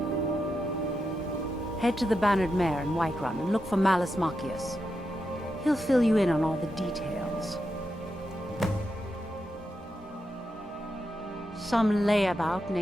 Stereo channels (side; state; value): both; normal; correlation 0.87